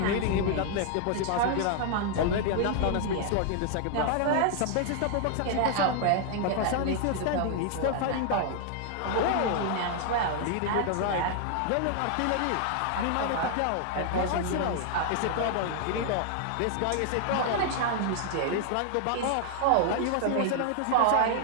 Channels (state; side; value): different; both; correlation -0.01